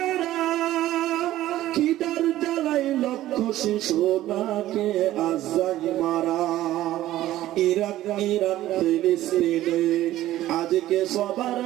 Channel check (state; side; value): quieter; left; 14.5 dB